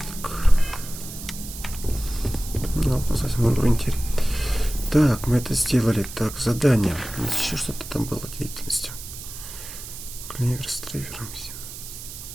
Так, мы это сделали. Так, задание. Еще что-то там было деятельностью. Клевер с трейвером.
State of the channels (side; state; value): right; noise; hiss, 12 dB below the sound